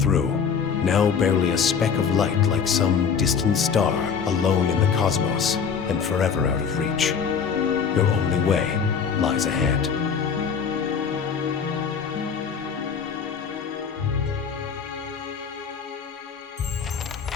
now barely a speck of light like some distant star alone in the cosmos and forever out of reach. Your only way lies ahead.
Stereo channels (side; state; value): right; quieter; 6.5 dB